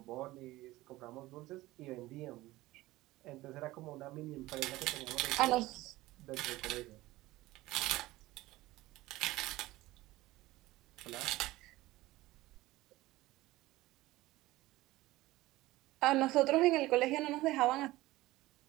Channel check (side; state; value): left; quieter; 18.2 dB